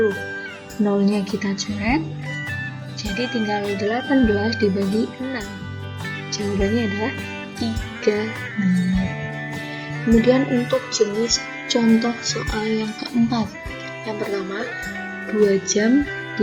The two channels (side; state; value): both; identical; correlation 1.00